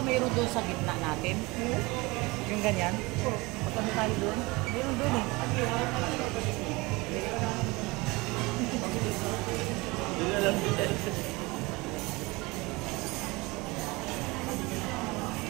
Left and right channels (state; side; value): quieter; left; 23.8 dB